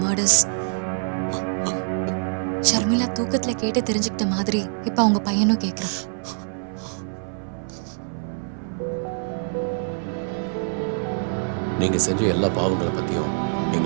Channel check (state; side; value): silent; left; 58 dB below the other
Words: மர்டர்ஸ். ஷர்மிளா தூக்கத்துல கேட்டு தெரிஞ்சுக்கிட்ட மாதிரி இப்ப அவங்க பையனும் கேட்கிறான். நீங்க செஞ்ச எல்லா பாவங்களை பத்தியும்